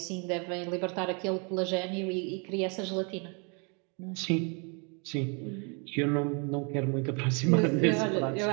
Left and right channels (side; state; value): left; quieter; 35.1 dB